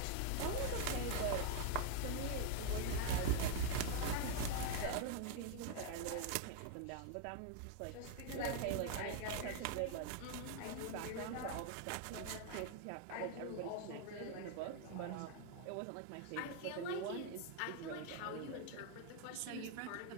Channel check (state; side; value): different; both; correlation 0.00